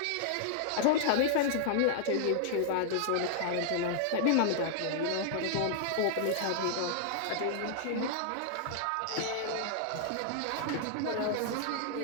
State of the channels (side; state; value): both; different; correlation -0.01